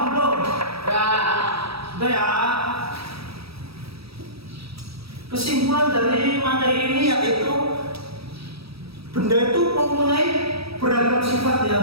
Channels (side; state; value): left; late; 0.77 ms